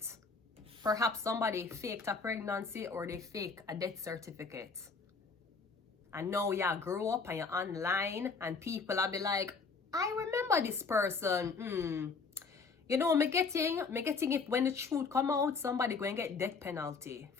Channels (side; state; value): right; quieter; 4.8 dB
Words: Perhaps somebody faked a pregnancy or they fake a death certificate. And now you grow up and you're online and people will be like, I remember this person. You know, me getting it when the truth come out, somebody going to get death penalty